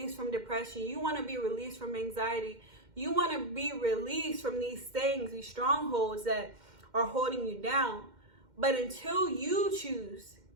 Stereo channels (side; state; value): left; late; 2.1 ms